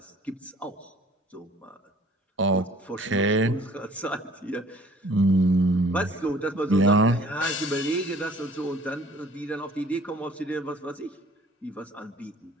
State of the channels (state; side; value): normal; both; correlation 0.53